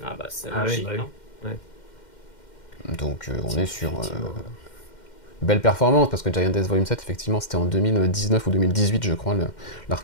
Ah bah c'est Ah logique. oui, bah hein. oui. Ouais. Donc on est sur Effectivement. belle performance, parce que Giant Days Volume 7, effectivement, c'était en 2019 ou 2018, je crois,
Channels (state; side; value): late; right; 2.1 ms